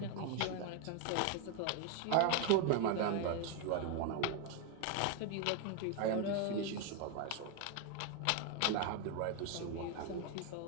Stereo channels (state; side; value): different; both; correlation 0.01